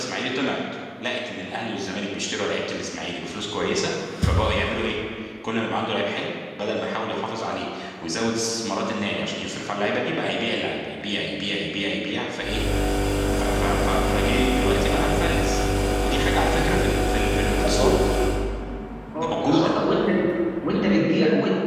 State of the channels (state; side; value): identical; both; correlation 1.00